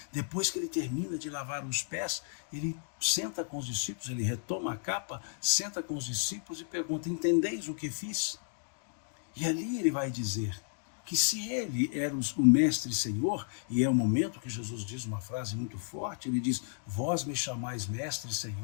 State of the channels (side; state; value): right; silent; digital silence